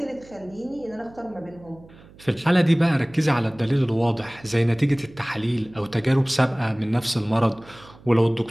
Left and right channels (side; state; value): right; noise; hum, 23 dB below the sound